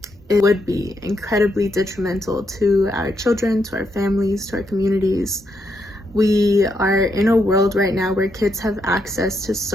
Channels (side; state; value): both; normal; correlation 0.79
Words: it would be incredibly detrimental to our children, to our families, to our communities. We are in a world right now where kids have access to